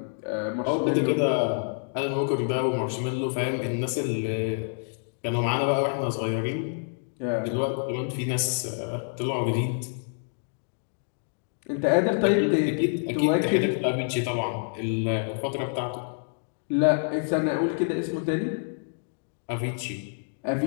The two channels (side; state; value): right; silent; digital silence